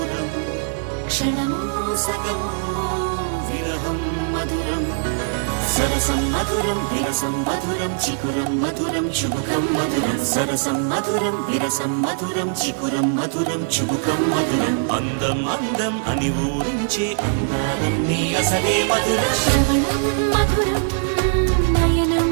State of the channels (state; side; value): silent; left; digital silence